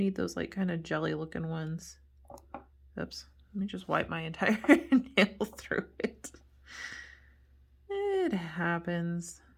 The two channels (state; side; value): identical; both; correlation 1.00